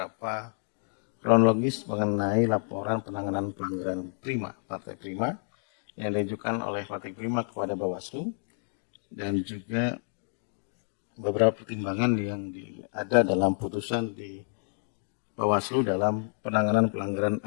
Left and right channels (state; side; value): silent; right; 58 dB below the other